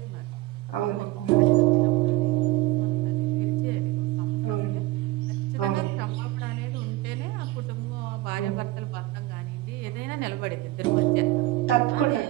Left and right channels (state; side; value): quieter; left; 17.6 dB